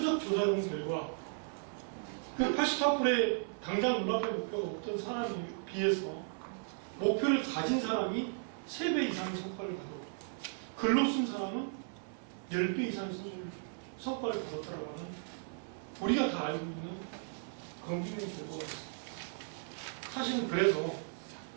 조사해본 결과 그 84%의 당장 눈앞에 목표가 없던 사람에 비해서 목표를 가진 사람이 3배 이상의 성과를 가졌고 글로 쓴 사람은 10배 이상의 성과를 거뒀다라고 하는 우리가 다 알고 있는 검증된 결과가 있습니다. 사실은 그래서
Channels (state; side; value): silent; left; 54 dB below the other